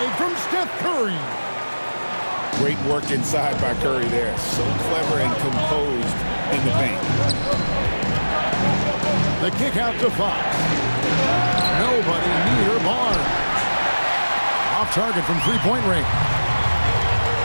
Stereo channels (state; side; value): inverted; both; correlation -1.00